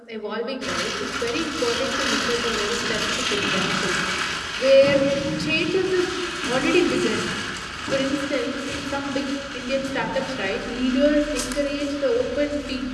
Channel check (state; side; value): identical; both; correlation 1.00